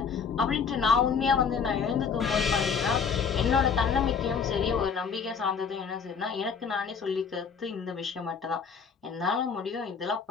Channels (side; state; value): right; quieter; 6.1 dB